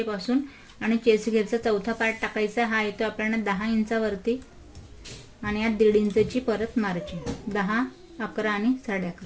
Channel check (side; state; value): both; identical; correlation 1.00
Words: आणि चेस्ट घेरचा चौथा पार्ट टाकायचा. हा येतो आपल्याला 10 इंचावरती आणि यात 1.5 इंचची परत मार्जिन. 10, 11 आणि